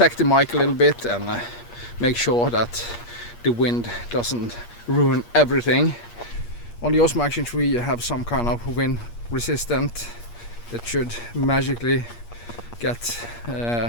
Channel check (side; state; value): right; late; 8.5 ms